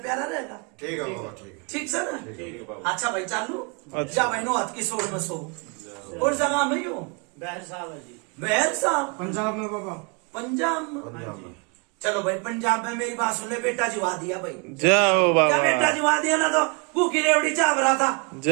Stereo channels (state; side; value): quieter; left; 33.5 dB